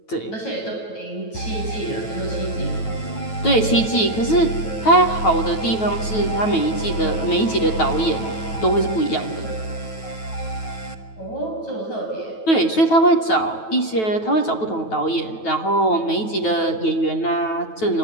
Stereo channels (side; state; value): right; late; 9.2 ms